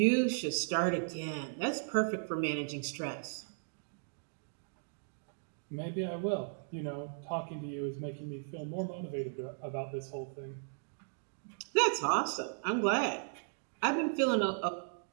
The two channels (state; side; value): silent; left; digital silence